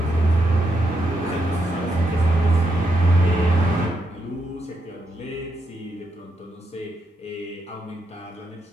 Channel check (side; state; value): both; normal; correlation 0.81